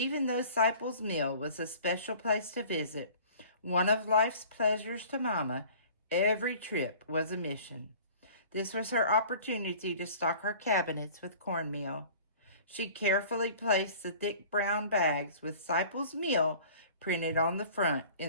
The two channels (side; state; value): both; inverted; correlation -0.46